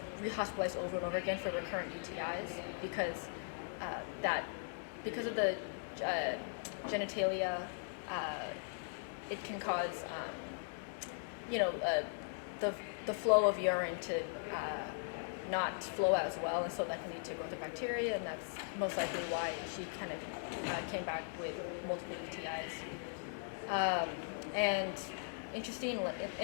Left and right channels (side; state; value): right; silent; digital silence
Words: rehospitalized over and over again for recurrent UTIs because of the genitalia, it can cause the flow of urine to not flow as well, and so that can lead to growth of bacteria, and that's most likely why she kind of came back with multiple UTIs. And